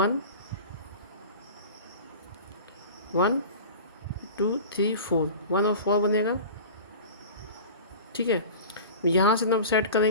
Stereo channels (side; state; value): both; inverted; correlation -0.36